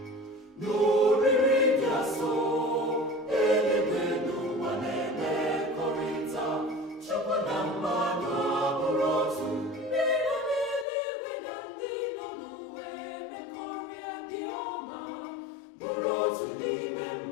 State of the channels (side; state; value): right; drops out; at 10.9 s